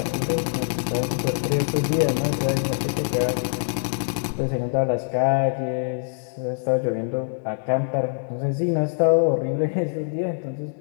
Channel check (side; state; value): right; silent; digital silence